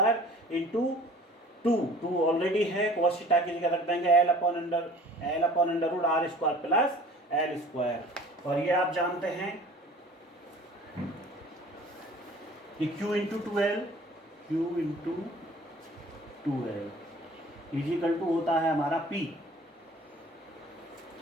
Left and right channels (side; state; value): both; normal; correlation 0.48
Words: L² 2 ऑलरेडी है, cos थीटा की जगह रख देंगे L/√r² प्लस L²। और ये आप जानते हैं कि Q × 2L होता है हमारा P,